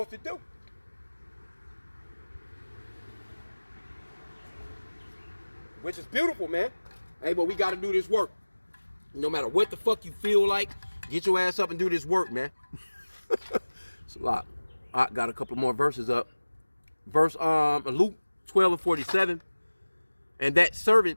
to do. Which is beautiful, man. Hey, but we got to do this work. No matter what the fuck you feel like, get your ass up and do this work, man. It's a lot. I got a couple more verses up. Verse Luke 12 and 47. And that servant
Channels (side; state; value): both; inverted; correlation -1.00